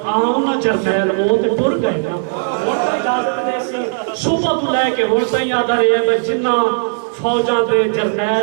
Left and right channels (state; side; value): silent; left; digital silence